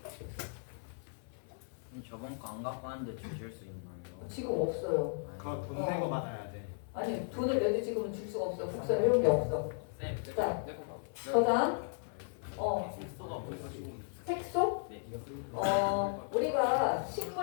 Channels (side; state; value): right; silent; 54 dB below the other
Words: 저번 거 안 갖고 왔는데 주실 수 있나요? 지금 없어요. 그거 돈 내고 받아야 돼. 아니, 돈을 내도 지금은 줄 수가 없어. 국사를 해온 게 없어. 자, 저장. 색소? 우리가